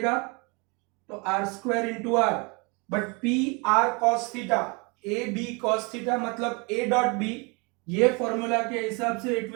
तो r square into r, but p r cos theta, a b cos theta मतलब a डॉट b, ये फॉर्मूला के हिसाब से it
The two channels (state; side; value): quieter; left; 29.8 dB